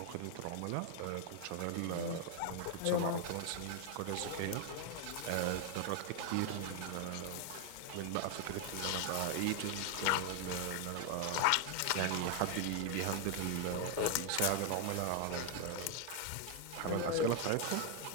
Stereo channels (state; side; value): different; both; correlation 0.00